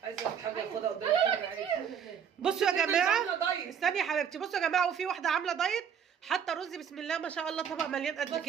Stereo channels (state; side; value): quieter; left; 7.9 dB